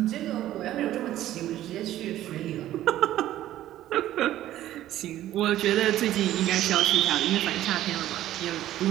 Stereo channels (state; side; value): quieter; left; 13.5 dB